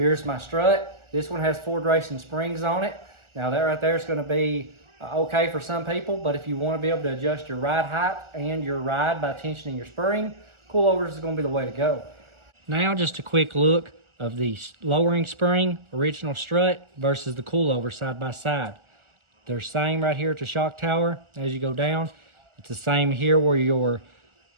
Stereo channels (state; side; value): late; left; 1.4 ms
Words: my strut. This one has Ford Racing springs on it. Now that right there is going to be okay for some people, but if you want to be able to adjust your ride height and your ride by tensioning your spring, coilovers is going to be the way to go. Now just a quick look of the lowering spring, original strut versus the coilover side by side. They're same right here at the shock tower as you go down. It's the same here where your